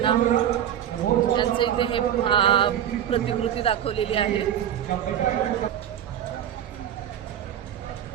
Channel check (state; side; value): quieter; left; 10.3 dB